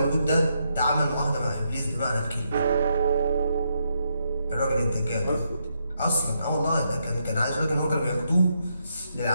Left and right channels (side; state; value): both; inverted; correlation -0.79